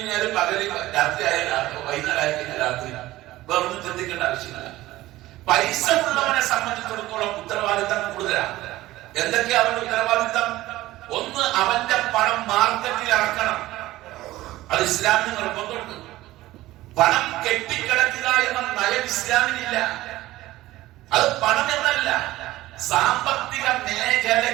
പകല്, രാത്രി ആയാലും വൈകുന്നേരം ആയി കഴിഞ്ഞാൽ രാത്രി, വേറൊന്നും ചിന്തിക്കേണ്ട ആവശ്യമില്ല. പൈസ ഉള്ളവനെ സംബന്ധിച്ചിടത്തോളം ഉത്തരവാദിത്തം കൂടുതലാണ്. എന്തൊക്കെയാ അവന്റെ ഉത്തരവാദിത്തം? ഒന്ന്, അവന്റെ പണം മാർക്കറ്റിൽ ഇറക്കണം. അത് ഇസ്ലാമിന് നിർബന്ധമുണ്ട്. പണം കെട്ടിക്കിടക്കുക എന്ന നയം ഇസ്ലാമിനില്ല. അത് പണം എന്നല്ല, സാമ്പത്തിക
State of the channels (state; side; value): quieter; left; 16.8 dB